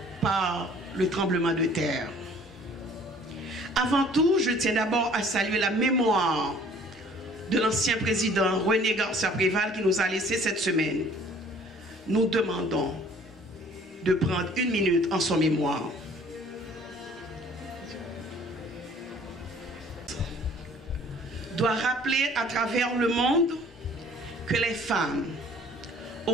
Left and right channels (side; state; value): both; normal; correlation 0.54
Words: par le tremblement de terre. Avant tout, je tiens d'abord à saluer la mémoire de l'ancien président René Garcia Préval qui nous a laissé cette semaine. Nous demandons de prendre une minute en son mémoire. Doit rappeler à travers le monde que les femmes,